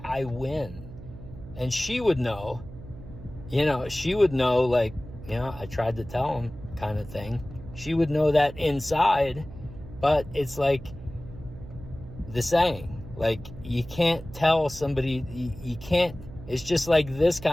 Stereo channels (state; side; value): noise; right; hum, 15 dB below the sound